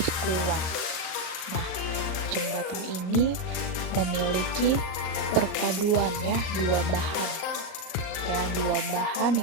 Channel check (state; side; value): late; right; 38 ms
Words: kuat. Nah, jembatan ini memiliki perpaduan ya, dua bahan